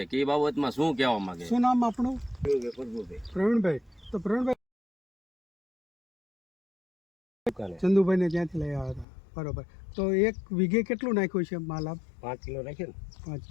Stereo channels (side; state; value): right; drops out; at 9.1 s